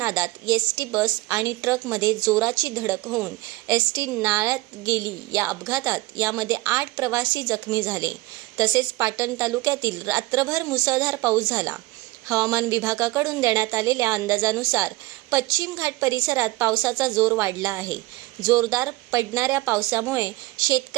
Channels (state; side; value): quieter; left; 20.5 dB